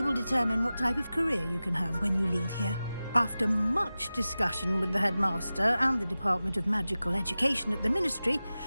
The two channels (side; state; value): both; inverted; correlation -0.95